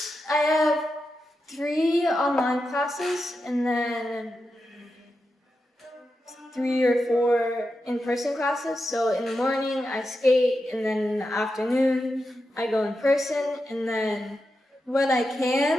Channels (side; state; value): both; normal; correlation 0.89